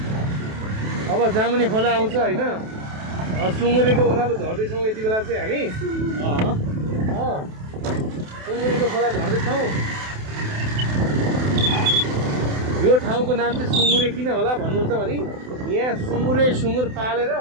अब जामुने खोला आउँछ होइन। सुँगुरेको ओह्रालो झर्दैछौँ यति बेला चाहिँ हामी। सुँगुरेको खोला झर्दैछौँ। यो ठाउँको नाम चाहिँ सुँगुरे किन होला भन्नुहुन्छ भने यहाँ सुँगुर पालेर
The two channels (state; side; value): late; left; 28 ms